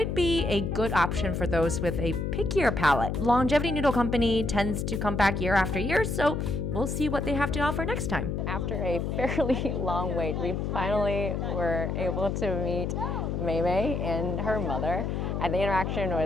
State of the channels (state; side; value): noise; left; hum, 1 dB below the sound